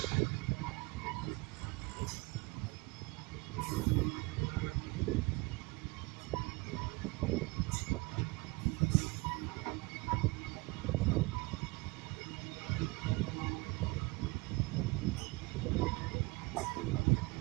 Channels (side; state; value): left; quieter; 25.1 dB